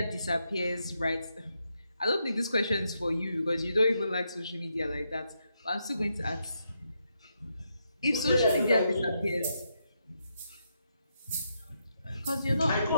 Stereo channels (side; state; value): both; inverted; correlation -0.81